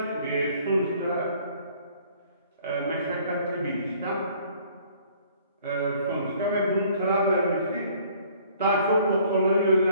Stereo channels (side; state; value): both; inverted; correlation -0.57